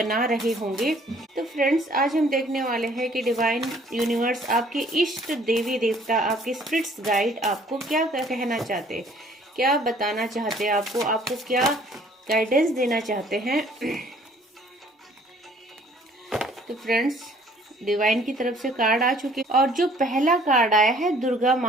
रहे होंगे। तो फ्रेंड्स, आज हम देखने वाले हैं कि डिवाइन यूनिवर्स, आपके इष्ट देवी देवता, आपके स्पिरिट्स गाइड आपको क्या कहना चाहते हैं, क्या बताना चाहते हैं, आपको क्या गाइडेंस देना चाहते हैं। तो फ्रेंड्स, डिवाइन की तरफ से कार्ड आ चुके और जो पहला कार्ड आया है दुर्गा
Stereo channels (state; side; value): normal; both; correlation 0.58